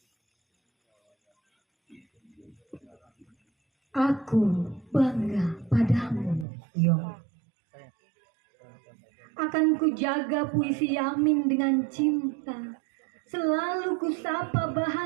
Aku bangga padamu, Yong. Akan kujaga puisi Yamin dengan cinta. Selalu kusapa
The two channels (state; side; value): drops out; left; at 6.5 s